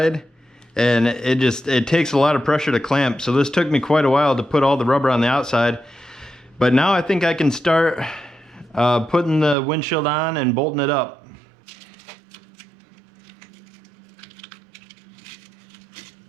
and it takes a lot of pressure to clamp. So this took me quite a while to put all the rubber on the outside. But now I think I can start putting the windshield on and bolting it up.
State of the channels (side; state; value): left; drops out; at 9.6 s